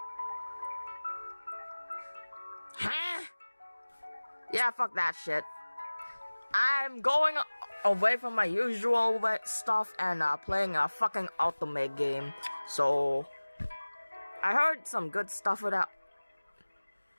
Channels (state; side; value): inverted; both; correlation -1.00